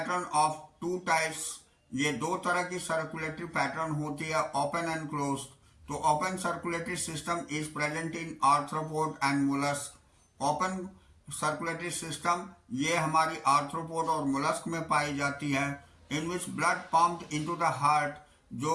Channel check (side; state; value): both; identical; correlation 1.00